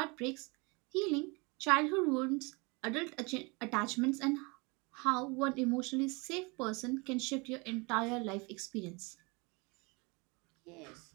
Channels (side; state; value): left; quieter; 28.4 dB